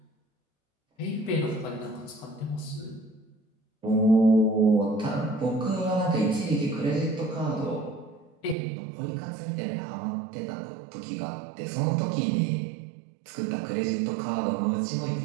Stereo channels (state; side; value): drops out; left; at 8.6 s